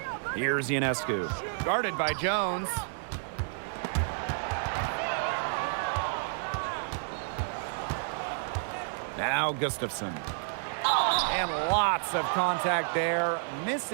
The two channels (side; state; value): left; silent; 55 dB below the other